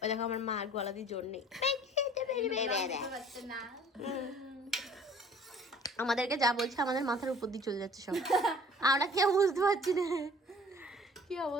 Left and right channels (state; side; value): normal; both; correlation 0.51